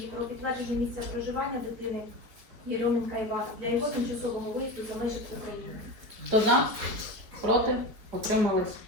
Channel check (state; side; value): late; left; 4.5 ms